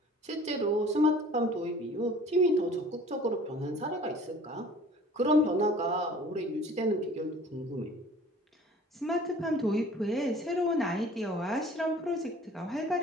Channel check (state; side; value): normal; both; correlation 0.48